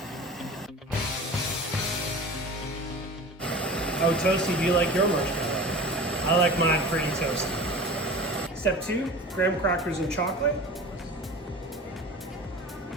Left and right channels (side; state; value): both; normal; correlation 0.36